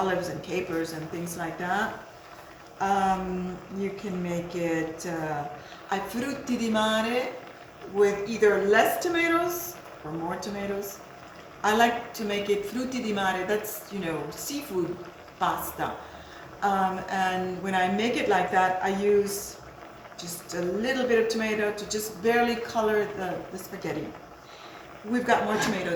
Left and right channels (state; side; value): identical; both; correlation 1.00